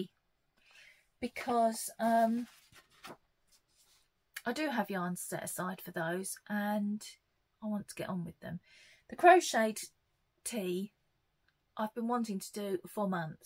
because I do have yarns set aside for those and I want to get on with them. The crocheted tee I've been wanting to do for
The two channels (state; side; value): identical; both; correlation 1.00